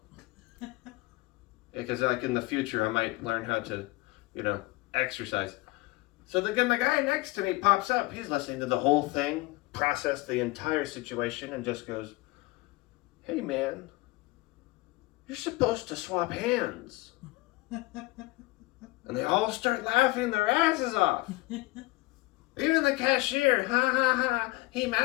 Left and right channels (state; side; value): quieter; right; 21.8 dB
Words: Because like in the future, I might learn how to, exercise. So the guy next to me pops up. He's listening to the whole thing, process the entire situation, and just goes, hey man, you're supposed to swap hands. And they all start laughing their asses off. Even the cashier, ha ha ha, he